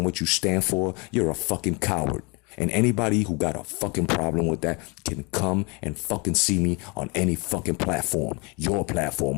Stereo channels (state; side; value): quieter; right; 29.6 dB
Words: what you stand for. You're a fucking coward. And anybody who got a fucking problem with that can come and fucking see me on any fucking platform. Your platform,